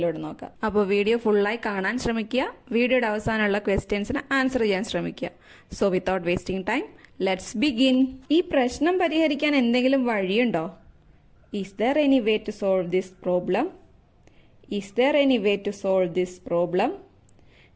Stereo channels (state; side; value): identical; both; correlation 1.00